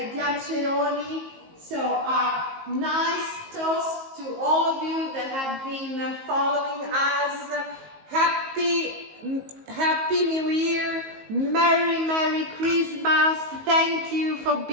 Diacceroni. So a nice toast to all of you that have been following us. Happy New Year, Merry Christmas. Thank you for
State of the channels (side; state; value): left; late; 19 ms